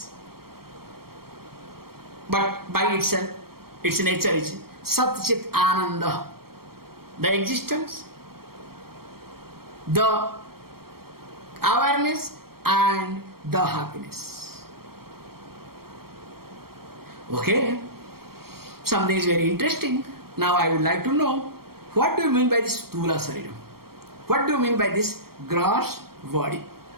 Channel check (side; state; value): left; late; 0.94 ms